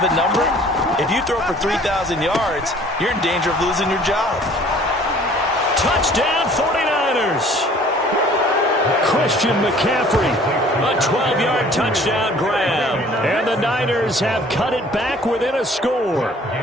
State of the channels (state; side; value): normal; both; correlation 0.53